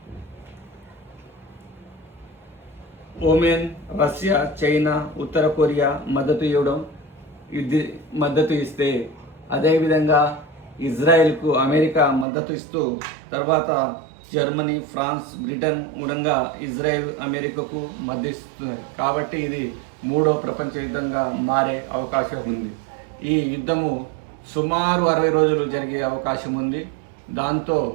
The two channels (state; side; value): drops out; left; at 12.2 s